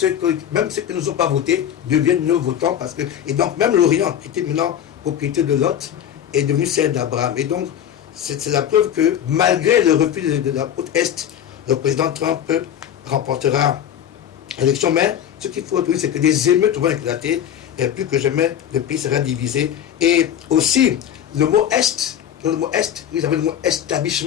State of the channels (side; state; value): right; quieter; 9.9 dB